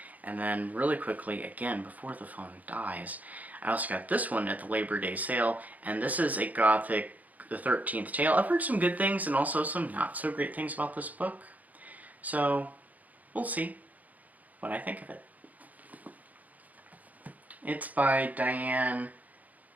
And then really quickly, again, before the phone dies, I also got this one at the Labor Day sale, and this is a Gothic, the 13th Tale. I've heard some good things and also some not so great things about this book. So, we'll see what I think of it. It's by Diane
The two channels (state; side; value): late; left; 0.077 ms